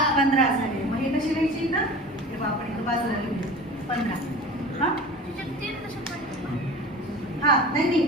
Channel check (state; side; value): normal; both; correlation 0.37